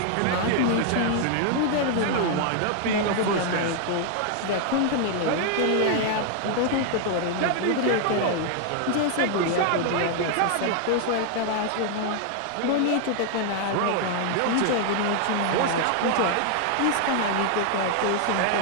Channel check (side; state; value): both; different; correlation 0.00